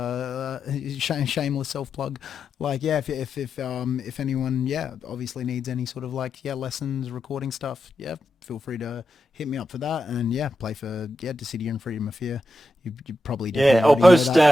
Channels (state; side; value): normal; both; correlation 0.87